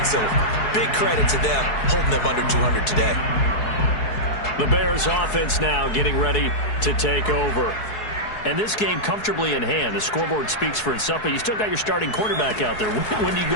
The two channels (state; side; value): late; right; 4.7 ms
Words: So big credit to them, holding them under 200 today. The Bears offense now getting ready to take over. And this game comfortably in hand. The scoreboard speaks for itself, but you still got your starting quarterback out there. When do you